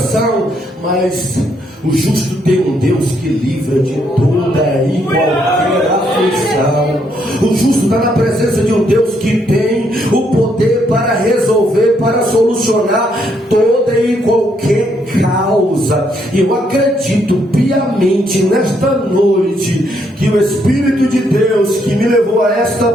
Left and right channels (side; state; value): both; normal; correlation 0.74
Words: mas o justo tem um Deus que livra de toda e qualquer aflição. O justo está na presença de um Deus que tem o poder para resolver, para solucionar toda e qualquer causa. E eu acredito piamente nesta noite que o Espírito de Deus que me levou a esta